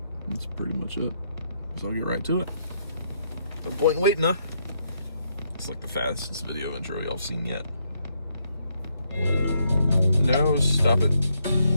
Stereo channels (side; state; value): both; inverted; correlation -0.75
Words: That's pretty much it. So I'll get right to it. No point in waiting, huh? It's like the fastest video intro y'all seen yet. No, stop it.